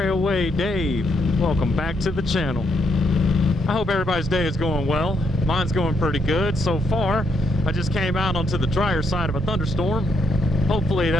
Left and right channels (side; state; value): both; normal; correlation 0.76